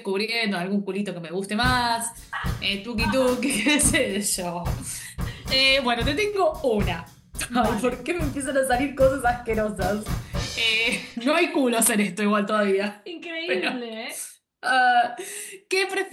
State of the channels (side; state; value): both; identical; correlation 1.00